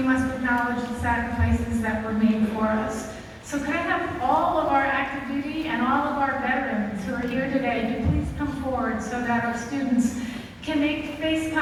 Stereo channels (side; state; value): both; identical; correlation 1.00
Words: must acknowledge the sacrifices that were made for us. So could I have all of our active duty and all of our veterans who are here today to please come forward so that our students can make face